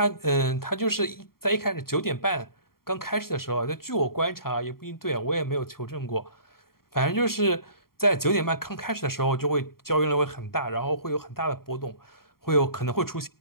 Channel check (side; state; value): right; late; 0.93 ms